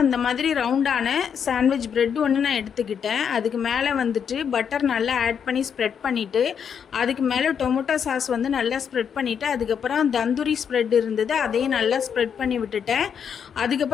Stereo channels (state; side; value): quieter; right; 7.5 dB